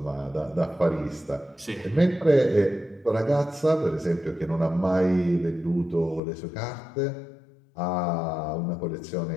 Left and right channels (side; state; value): right; drops out; at 6.2 s